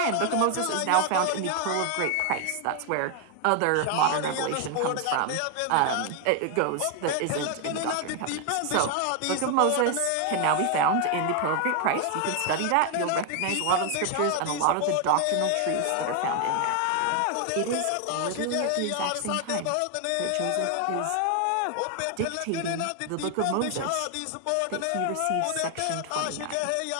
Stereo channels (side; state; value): both; different; correlation 0.00